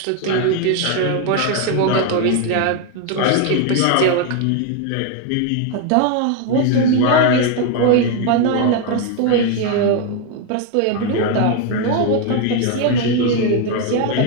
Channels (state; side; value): different; both; correlation 0.01